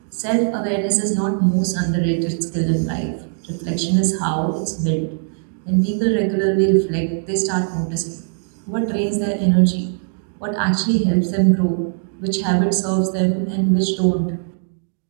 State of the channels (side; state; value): left; silent; digital silence